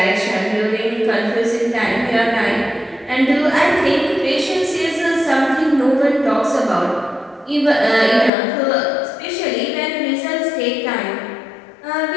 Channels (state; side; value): drops out; right; at 8.3 s